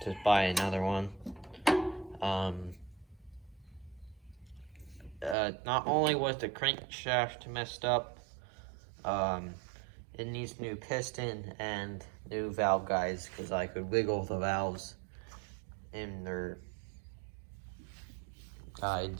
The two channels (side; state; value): left; drops out; at 5.4 s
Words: buy another one. Not only was the crankshaft messed up, it needs new piston and new valve guides, because I could wiggle the valves in their